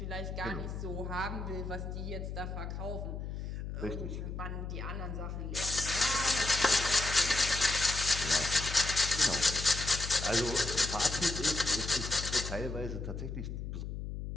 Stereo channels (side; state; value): left; noise; hum, 6 dB below the sound